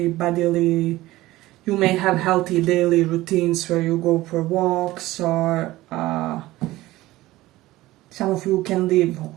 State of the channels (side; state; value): left; quieter; 17.5 dB